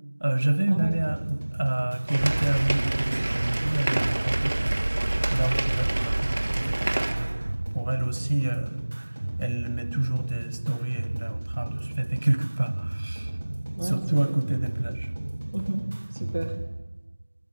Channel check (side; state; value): both; inverted; correlation -1.00